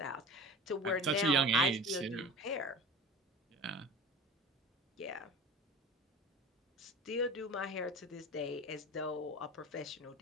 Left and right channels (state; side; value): normal; both; correlation 0.35